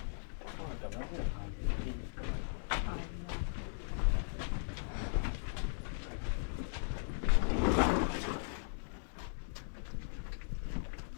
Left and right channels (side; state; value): right; silent; 52 dB below the other